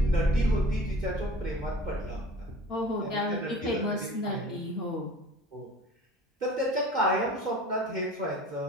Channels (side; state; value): both; normal; correlation 0.43